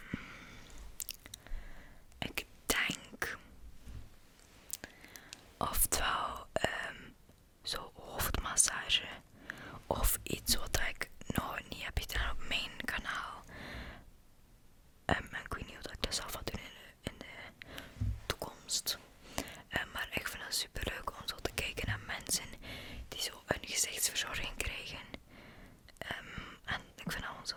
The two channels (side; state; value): both; identical; correlation 1.00